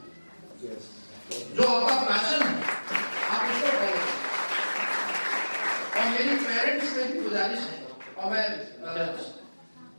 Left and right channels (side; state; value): both; inverted; correlation -1.00